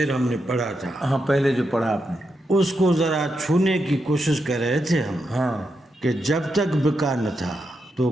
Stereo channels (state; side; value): normal; both; correlation 0.84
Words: ہم نے پڑھا تھا، ہاں پہلے جو پڑھا آپ نے، اس کو ذرا چھونے کی کوشش کر رہے تھے ہم. ہاں کہ جب تک بکا نہ تھا تو